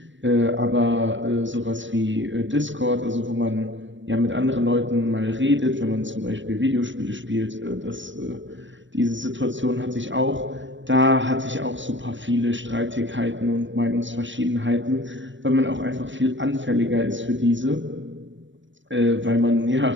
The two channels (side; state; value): left; late; 0.54 ms